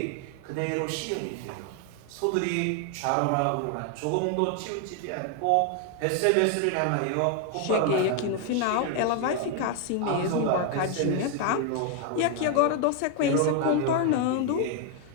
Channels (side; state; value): both; different; correlation 0.01